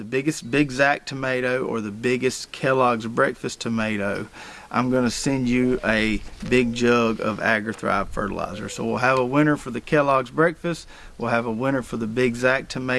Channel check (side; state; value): both; identical; correlation 1.00